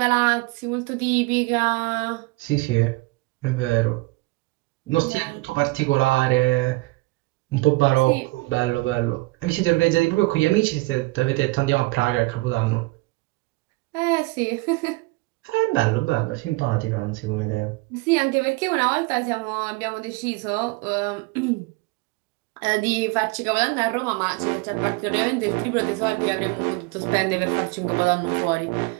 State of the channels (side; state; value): left; quieter; 23.2 dB